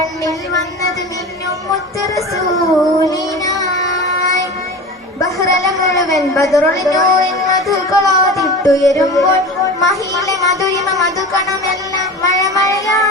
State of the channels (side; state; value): both; normal; correlation 0.33